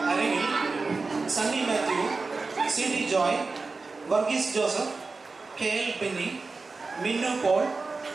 അരങ്ങിൽ Sunny Mathew, C D Joy, Varghese Joseph, K L Benny, Minnu Paul,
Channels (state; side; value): quieter; left; 4.0 dB